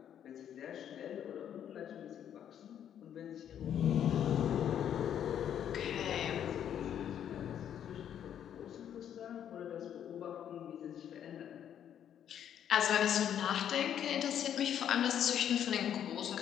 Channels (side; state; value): right; quieter; 9.6 dB